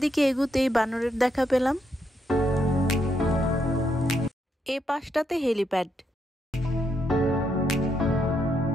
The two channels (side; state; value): both; normal; correlation 0.78